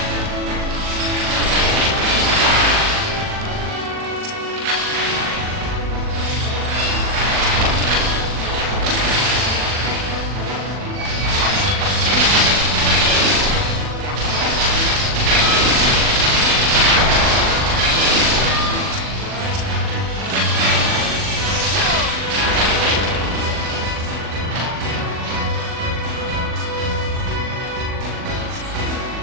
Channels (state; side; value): late; left; 40 ms